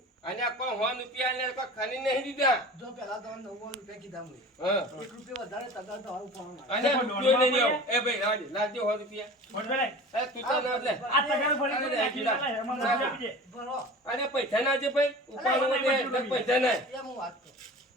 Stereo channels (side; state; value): both; normal; correlation 0.38